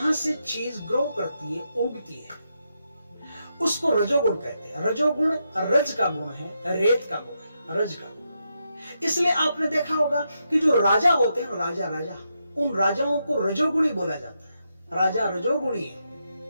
से चीज ग्रो करती है, उगती है, उसको रजोगुण कहते हैं। रजोगुण रज का गुण है, रेत का गुण है, रज का गुण। इसलिए आपने देखा होगा कि जो राजा होते हैं, राजा उन राजाओं को रजोगुणी बोला जाता है। राजा रजोगुणी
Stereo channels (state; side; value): inverted; both; correlation -0.83